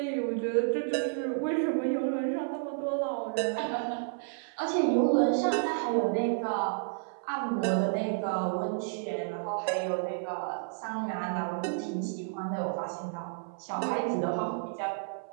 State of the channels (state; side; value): silent; left; 57 dB below the other